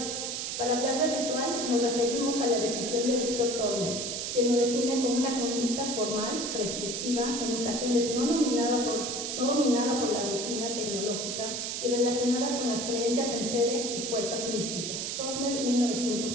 Para hablar de ritual nos referimos a la definición de Víctor Turner, quien lo define como una conducta formal, prescriptiva, en ocasiones no dominada por la rutina tecnológica y relacionada con las creencias en seres y fuerzas místicas. Turner,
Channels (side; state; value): right; noise; hiss, 3 dB below the sound